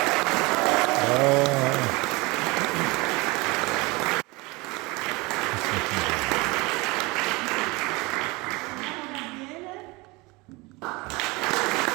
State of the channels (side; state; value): left; quieter; 24.5 dB